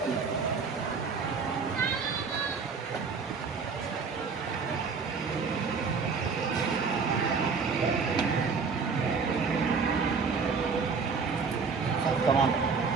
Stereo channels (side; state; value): left; quieter; 5.2 dB